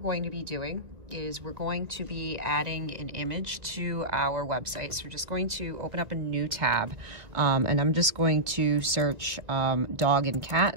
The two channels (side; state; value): left; late; 1.7 ms